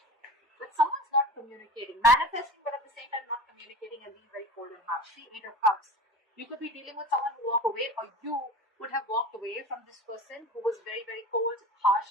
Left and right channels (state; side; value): normal; both; correlation 0.35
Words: But someone's not communicating, manifesting, but at the same time not communicating and being very cold and harsh. See, 8 of Cups. You could be dealing with someone who walked away, or you would have walked away from this person who was very, very cold,